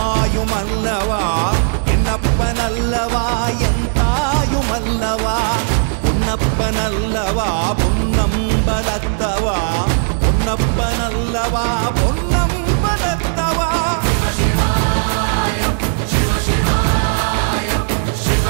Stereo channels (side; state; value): left; silent; digital silence